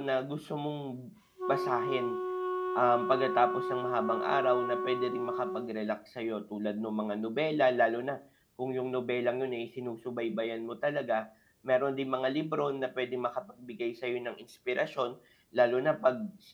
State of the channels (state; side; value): identical; both; correlation 1.00